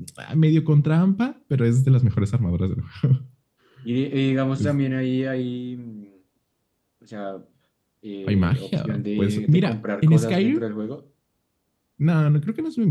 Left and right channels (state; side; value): identical; both; correlation 1.00